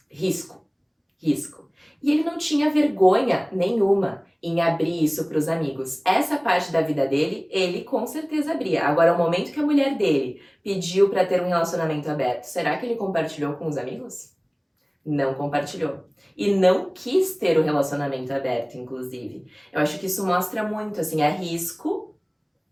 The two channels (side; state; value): both; identical; correlation 1.00